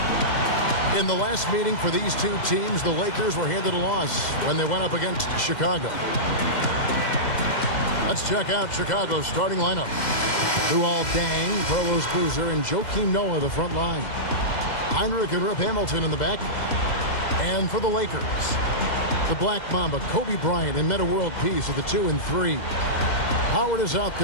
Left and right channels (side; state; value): right; late; 2.0 ms